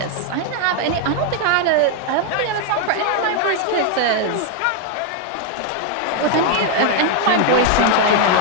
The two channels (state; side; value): different; both; correlation 0.01